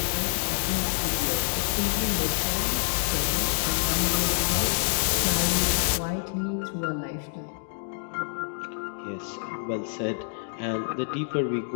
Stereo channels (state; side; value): silent; right; digital silence